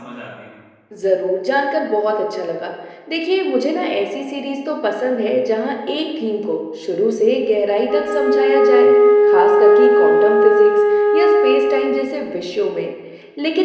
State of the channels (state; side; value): identical; both; correlation 1.00